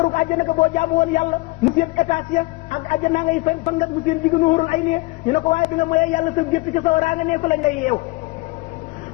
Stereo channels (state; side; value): quieter; right; 23.3 dB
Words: àjjana ka boo jaamu woon yàlla mu seen étage ya ak àjjana ngay fangat mu seen digg nuurul ay nee ñu ne ko waaye bi nga mooyee yàlla sa gétt ci sawaraa nga ne ko lañ lay yeew